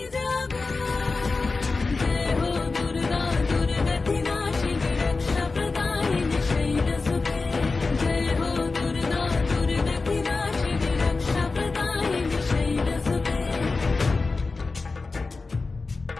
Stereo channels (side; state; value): right; quieter; 3.9 dB